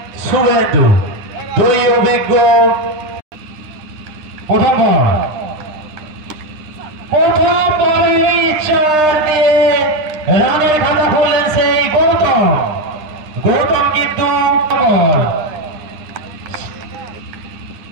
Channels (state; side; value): late; left; 9.8 ms